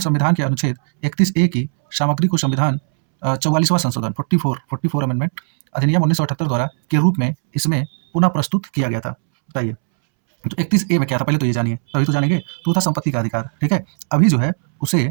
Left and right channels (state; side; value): silent; left; 67 dB below the other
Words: संविधान के अनुच्छेद 31A की सामग्री को संविधान 44वां संशोधन 44 अमेंडमेंट अधिनियम 1978 द्वारा के रूप में इसमें पुनः प्रस्तुत किया गया था, बताइए। तो 31A में क्या था, पहले तो ये जानिए, तभी तो जानेंगे। तो था संपत्ति का अधिकार, ठीक है। अभी जो है उसे